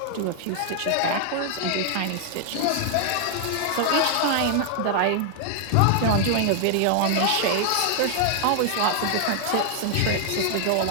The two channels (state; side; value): different; both; correlation 0.00